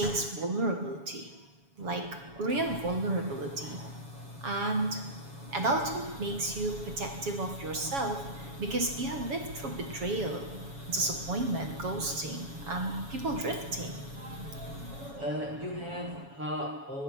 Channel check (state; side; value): late; left; 7.2 ms